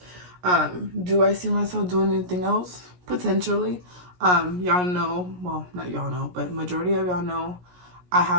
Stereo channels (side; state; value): left; late; 17 ms